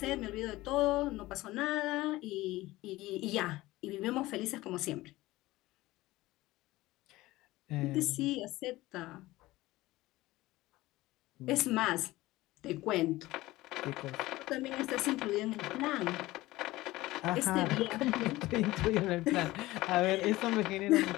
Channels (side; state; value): right; quieter; 18.2 dB